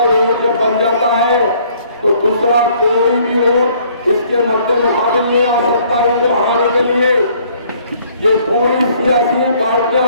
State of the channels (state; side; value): inverted; both; correlation -0.61